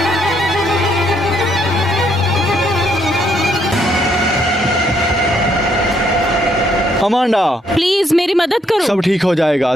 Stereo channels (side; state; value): both; normal; correlation 0.71